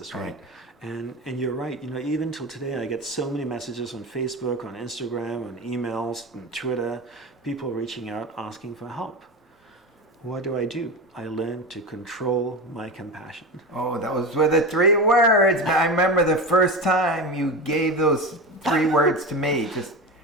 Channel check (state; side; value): normal; both; correlation 0.23